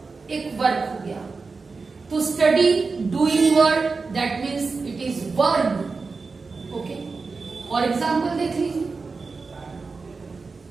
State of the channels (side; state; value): left; quieter; 4.3 dB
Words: एक वर्ब हो गया. तो study doing word, that means it is verb. Okay, और एग्जाम्पल देख लीजिए.